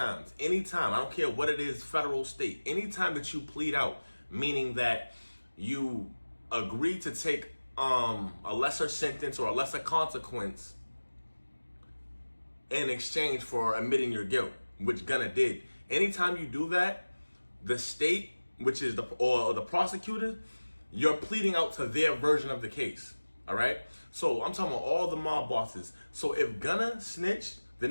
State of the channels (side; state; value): both; inverted; correlation -1.00